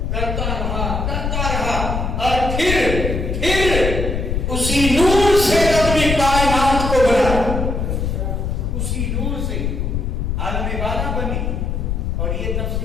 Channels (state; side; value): noise; left; rumble, 1 dB below the sound